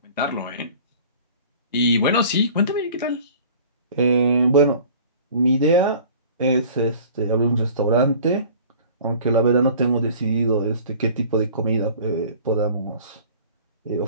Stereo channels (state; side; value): inverted; both; correlation -0.46